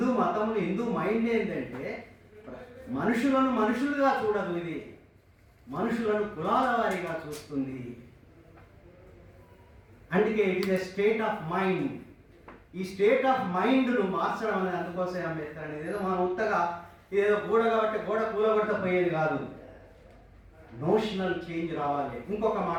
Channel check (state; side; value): identical; both; correlation 1.00